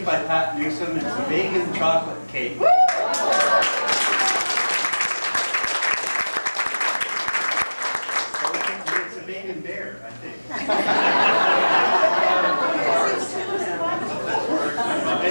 by Pat Newsom. It's a vegan chocolate cake. It's a vegan bear, I think.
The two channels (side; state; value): both; inverted; correlation -1.00